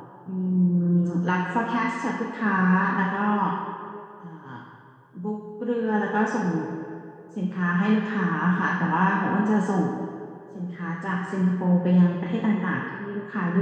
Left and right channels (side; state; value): both; identical; correlation 1.00